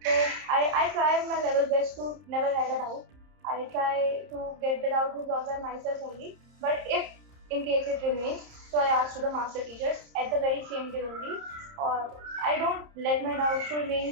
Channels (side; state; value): left; late; 30 ms